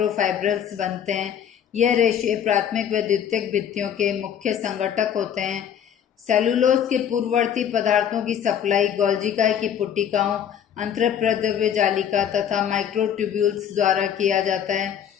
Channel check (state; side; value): quieter; right; 8.9 dB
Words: बनते हैं। यह रेशे प्राथमिक व द्वितीयक भित्तियों के मुख्य संगठक होते हैं। सेलुलोज के पूर्ववर्ती पदार्थों की सप्लाई गोल्जिकाई की पुटिकाओं, अंतःप्रद्रव्य जालिका तथा माइक्रोट्यूब्यूल्स द्वारा किया जाता है।